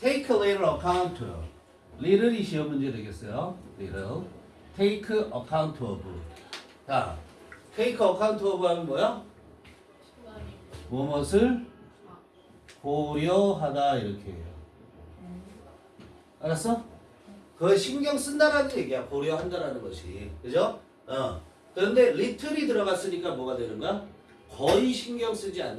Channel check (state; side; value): identical; both; correlation 1.00